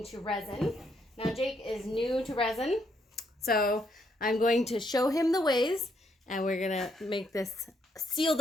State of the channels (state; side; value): normal; both; correlation 0.74